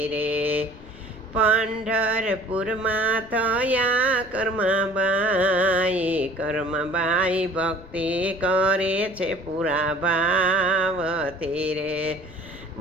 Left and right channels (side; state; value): left; noise; rumble, 19 dB below the sound